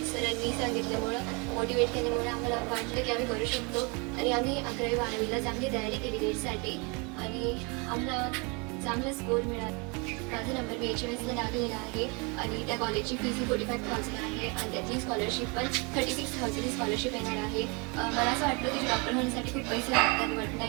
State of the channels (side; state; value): left; quieter; 30.9 dB